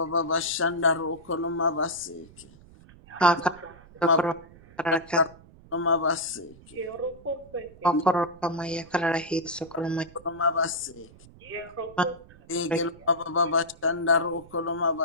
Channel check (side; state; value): right; noise; rumble, 22 dB below the sound